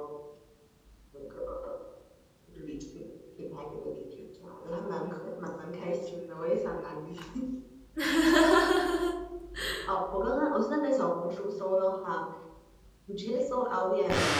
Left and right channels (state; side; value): identical; both; correlation 1.00